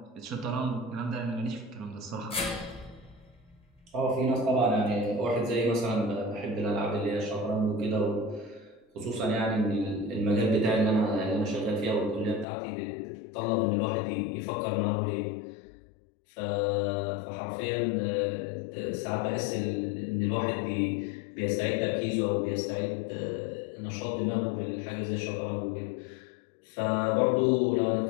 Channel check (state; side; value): drops out; right; at 12.5 s